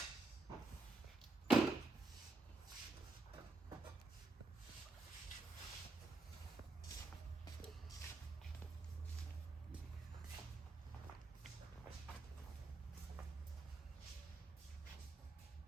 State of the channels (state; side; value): quieter; left; 3.4 dB